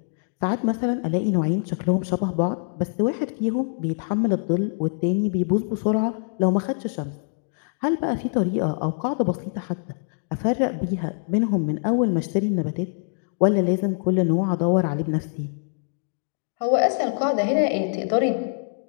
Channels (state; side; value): silent; right; digital silence